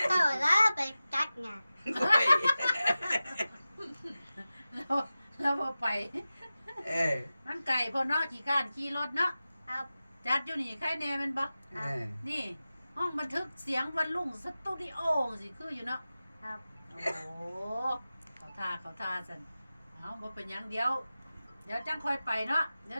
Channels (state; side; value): inverted; both; correlation -0.95